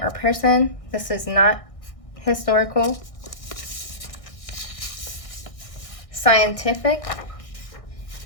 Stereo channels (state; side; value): late; right; 1.6 ms